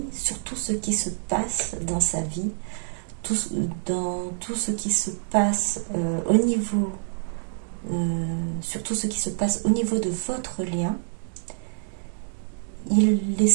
sur tout ce qui se passe dans sa vie, dans tout ce qui se passe sur tout ce qui se passe au niveau de votre lien. Il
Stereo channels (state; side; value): silent; left; digital silence